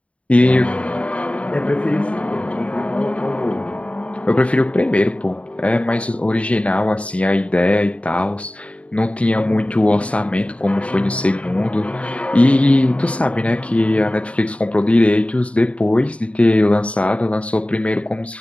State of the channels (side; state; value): right; late; 0.063 ms